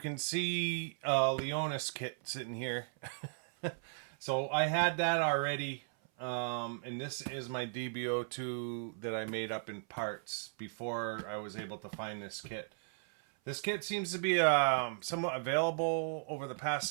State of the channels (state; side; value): silent; left; 54 dB below the other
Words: see Leonis kit sitting here. So I had that already. And this is my DB02 that I made up in parts before I was able to find this kit. This kit seems to be somewhat available over the past